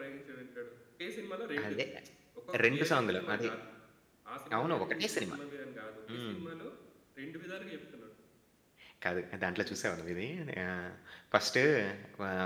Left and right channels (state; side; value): identical; both; correlation 1.00